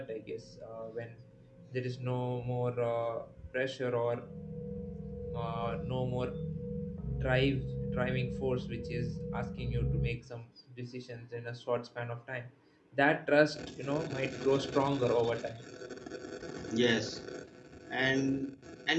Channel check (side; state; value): both; identical; correlation 1.00